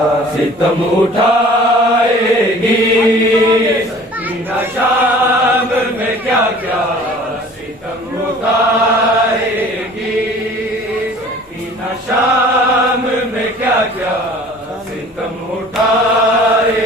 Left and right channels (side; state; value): both; normal; correlation 0.48